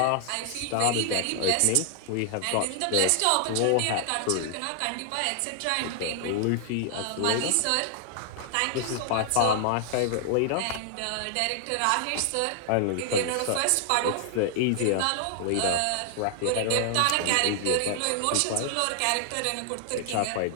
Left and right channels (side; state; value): both; different; correlation 0.00